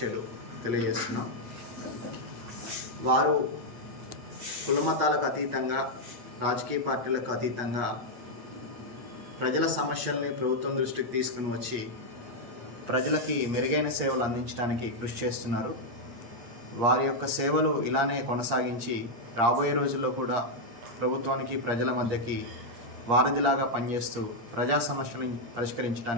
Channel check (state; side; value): late; left; 8.6 ms